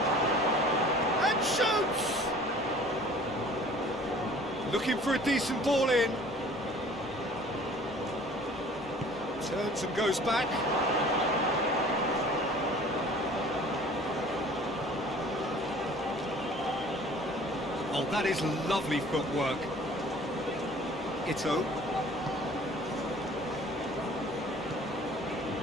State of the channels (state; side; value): normal; both; correlation 0.49